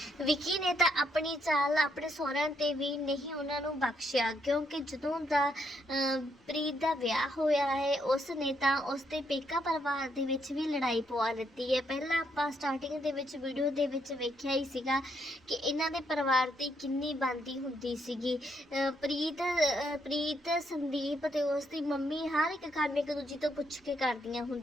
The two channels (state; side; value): normal; both; correlation 0.75